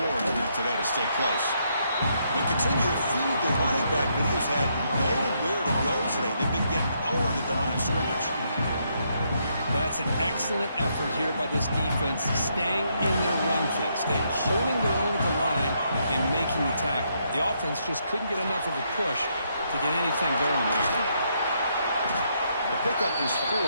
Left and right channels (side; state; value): both; inverted; correlation -0.75